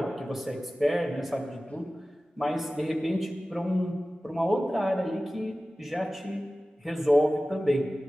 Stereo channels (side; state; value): both; normal; correlation 0.96